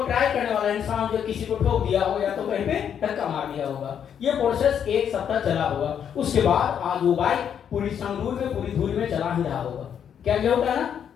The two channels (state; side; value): quieter; right; 8.5 dB